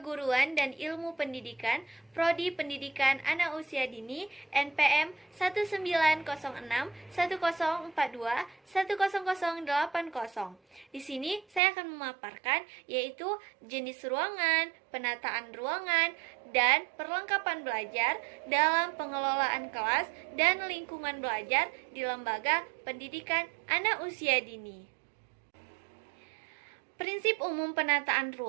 dan Ilmu Pendidikan, Prodi Pendidikan Anak Usia Dini, NPM 194110421080. Di sini saya akan memaparkan yaitu jenis ruangan, penataan ruangan, dan perlengkapan belajar dalam pengelolaan kelas dan lingkungan belajar di lembaga pendidikan anak usia dini. Prinsip umum penataan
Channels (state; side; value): drops out; left; at 11.6 s